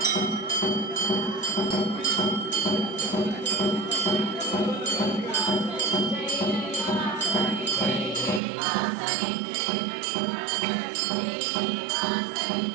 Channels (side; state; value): left; drops out; at 8.4 s